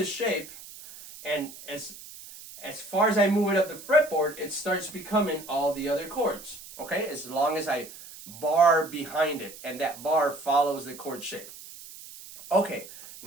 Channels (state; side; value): noise; right; hiss, 16 dB below the sound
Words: shape, and as far as I move it up the fretboard, it starts becoming all the other chords. Okay? As long as I bar behind it, and that bar follows the chord shape. Okay,